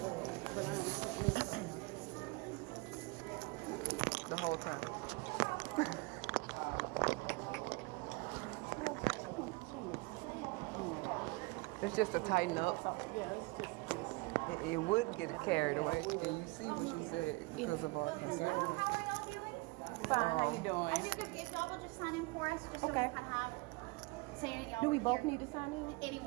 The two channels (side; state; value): left; quieter; 26.1 dB